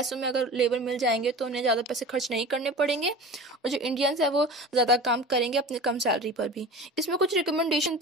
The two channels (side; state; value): both; normal; correlation 0.35